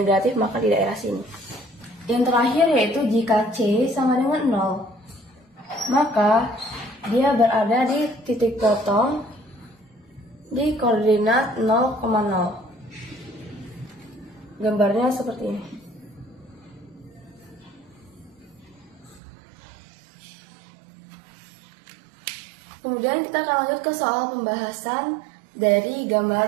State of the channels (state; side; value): drops out; left; at 19.2 s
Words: maka di daerah sini. Yang terakhir yaitu jika C sama dengan 0, maka dia berada di titik potong di koordinat 0,0. Gambarnya seperti ini. Kemudian kita akan lanjut ke soal pembahasan dari